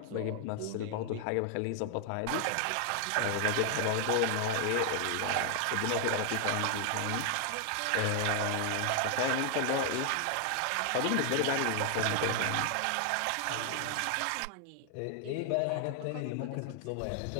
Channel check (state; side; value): different; both; correlation 0.00